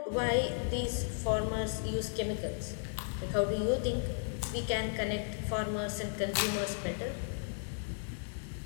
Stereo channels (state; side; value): silent; right; digital silence